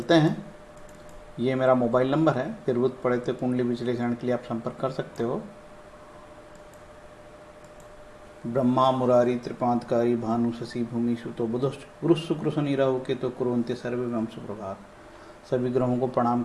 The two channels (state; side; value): identical; both; correlation 1.00